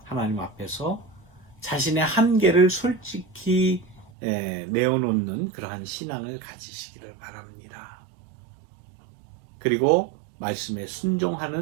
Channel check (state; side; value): drops out; left; at 4.1 s